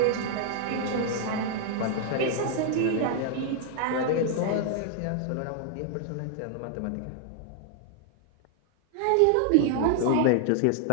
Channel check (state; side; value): different; both; correlation 0.00